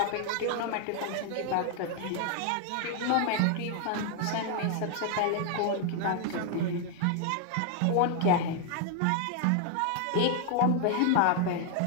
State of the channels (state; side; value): different; both; correlation 0.00